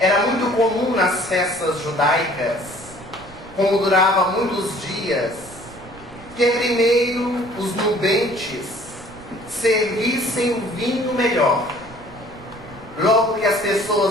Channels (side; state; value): right; noise; rumble, 20 dB below the sound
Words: muito comum nas festas judaicas, como durava muitos dias, que primeiro os nubentes servissem o vinho melhor. Logo que as